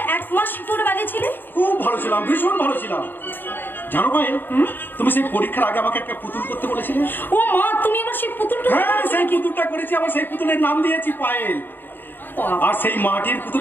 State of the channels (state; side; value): late; right; 0.094 ms